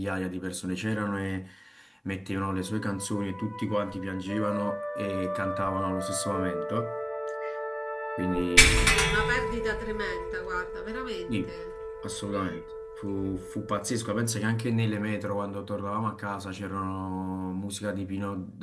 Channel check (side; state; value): both; identical; correlation 1.00